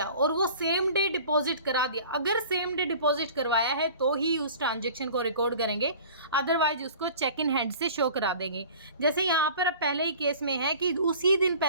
और वो सेम डे डिपॉजिट करा दिया, अगर सेम डे डिपॉजिट करवाया है तो ही उस ट्रांजेक्शन को रिकॉर्ड करेंगे, अदरवाइज उसको चेक इन हैंड से शो करा देंगे। जैसे यहाँ पर पहले ही केस में है कि उसी दिन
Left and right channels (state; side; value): inverted; both; correlation -0.44